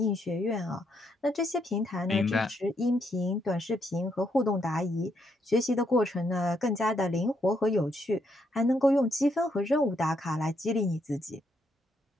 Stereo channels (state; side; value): normal; both; correlation 0.76